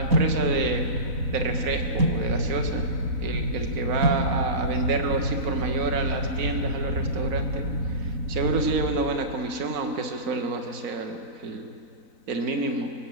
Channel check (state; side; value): late; left; 4.0 ms